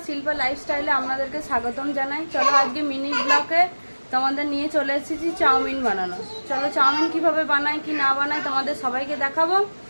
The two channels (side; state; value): both; inverted; correlation -1.00